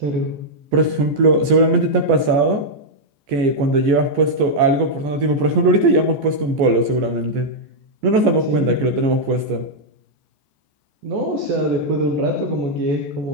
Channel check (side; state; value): left; late; 14 ms